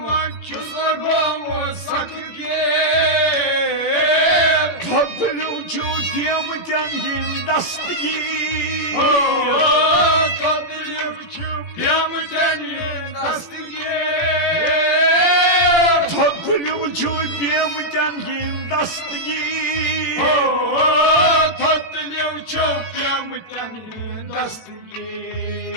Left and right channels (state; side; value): late; right; 17 ms